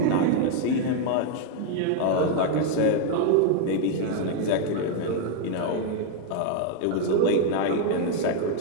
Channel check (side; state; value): both; different; correlation 0.00